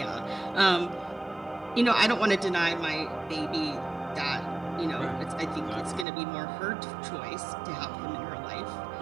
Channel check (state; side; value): drops out; left; at 6.1 s